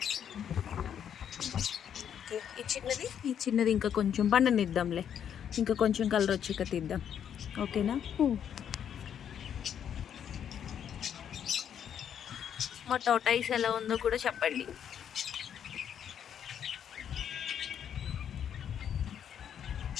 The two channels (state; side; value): quieter; right; 8.8 dB